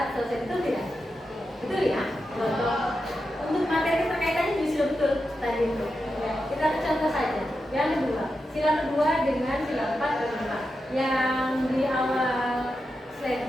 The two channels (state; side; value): normal; both; correlation 0.89